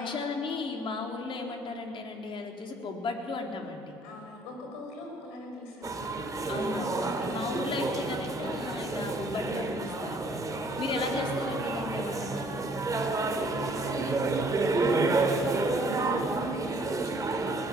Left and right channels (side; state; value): both; normal; correlation 0.60